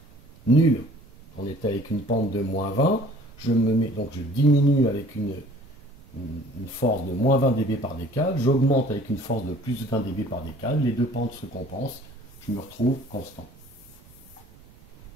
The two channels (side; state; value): right; noise; rumble, 25 dB below the sound